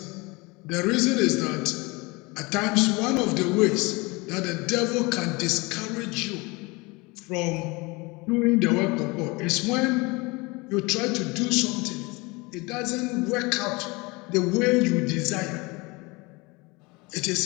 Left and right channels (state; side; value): quieter; right; 25.5 dB